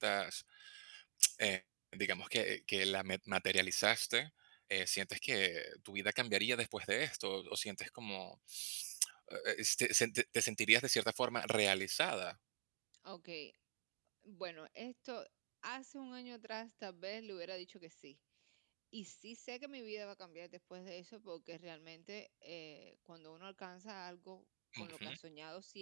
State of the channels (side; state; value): left; silent; digital silence